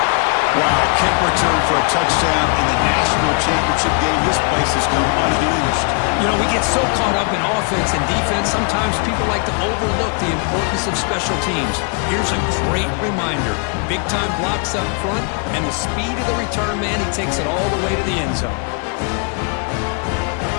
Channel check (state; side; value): quieter; right; 36.9 dB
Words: Wow, kick return for a touchdown in the national championship game. This place has come unhinged. You know, we get so caught up in offense and defense, sometimes people like to overlook the importance of special teams. Here's a great reminder. Big-time blocks up front, and the speed of the return man, he takes it all the way to the end zone.